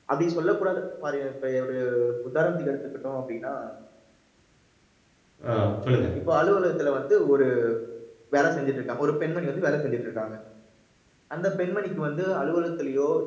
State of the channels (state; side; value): identical; both; correlation 1.00